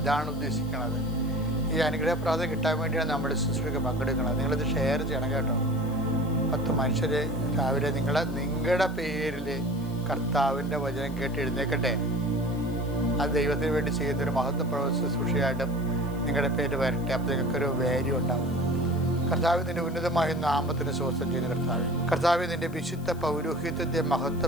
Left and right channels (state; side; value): noise; left; hiss, 23 dB below the sound